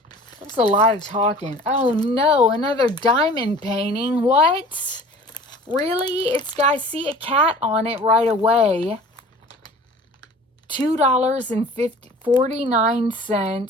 That's a lot of talking. Oh, no, another diamond painting. What? Really? I see a cat on it right away.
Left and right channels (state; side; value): normal; both; correlation 0.45